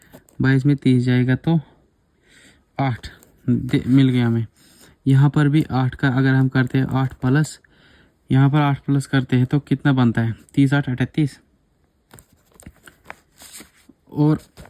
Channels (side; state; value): both; identical; correlation 1.00